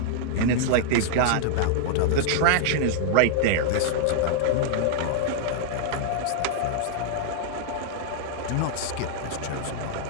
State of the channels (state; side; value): different; both; correlation -0.01